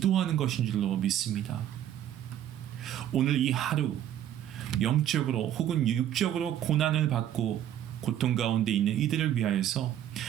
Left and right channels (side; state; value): left; quieter; 11.2 dB